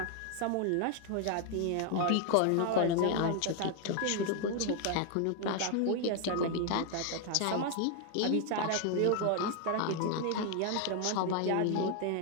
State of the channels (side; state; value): both; different; correlation 0.00